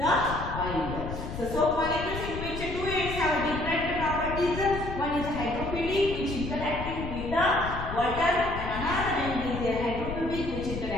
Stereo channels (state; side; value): noise; left; rumble, 7 dB below the sound